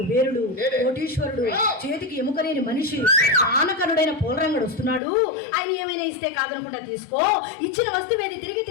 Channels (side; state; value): right; drops out; at 5.0 s